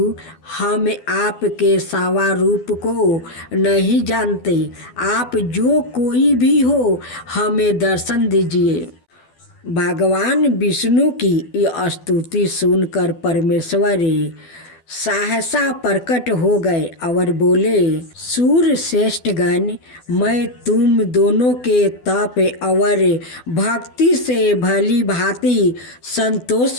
हम आपके सावा रूप को नहीं जानते, आप जो कोई भी हो हमें दर्शन दीजिए। भगवान विष्णु की यह स्तुति सुनकर परमेश्वर सहसा प्रकट हो गए और बोले, सूर्य श्रेष्ठ गण, मैं तुम दोनों के तप और भक्ति से भली भांति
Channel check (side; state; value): right; late; 12 ms